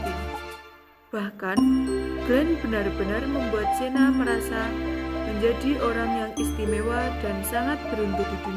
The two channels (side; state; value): both; identical; correlation 1.00